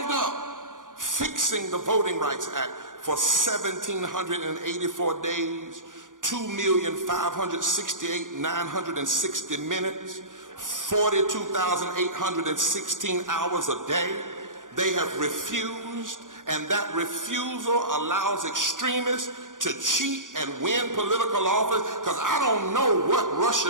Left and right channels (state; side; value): late; left; 0.88 ms